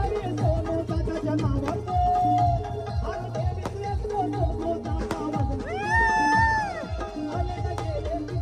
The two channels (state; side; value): identical; both; correlation 1.00